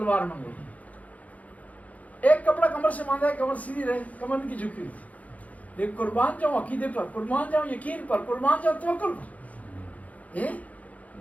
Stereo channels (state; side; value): late; right; 0.071 ms